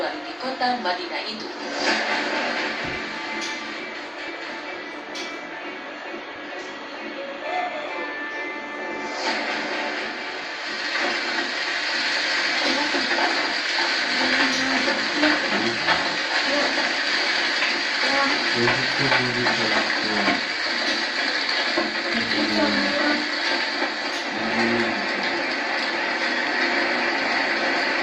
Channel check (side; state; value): both; identical; correlation 1.00